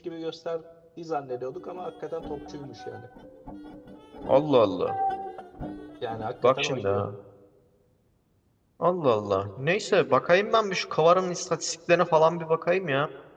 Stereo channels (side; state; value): both; identical; correlation 1.00